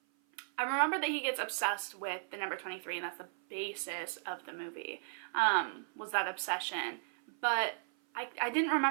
I remember that he gets obsessed with the number 23, and that's the basis of the movie, was that obsession. But I didn't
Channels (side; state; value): left; silent; 54 dB below the other